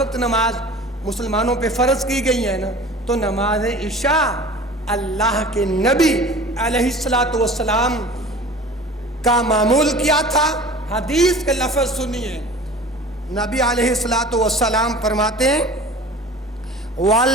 نماز مسلمانوں پہ فرض کی گئی ہے نا. تو نماز عشاء اللہ کے نبی علیہ الصلوۃ والسلام کا معمول کیا تھا. حدیث کے لفظ سنیے. نبی علیہ الصلوۃ والسلام فرماتے ہیں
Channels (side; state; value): both; normal; correlation 0.41